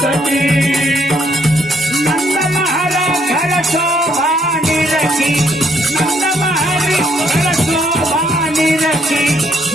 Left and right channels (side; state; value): both; normal; correlation 0.70